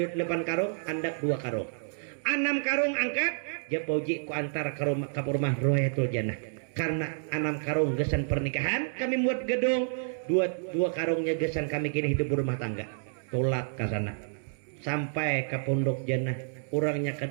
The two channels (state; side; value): silent; left; digital silence